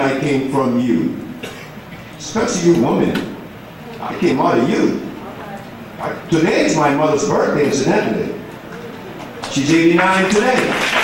came from you? Especially you women. I came out of you. Today is my mother's birthday, incidentally. She's 89 today.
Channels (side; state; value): both; identical; correlation 1.00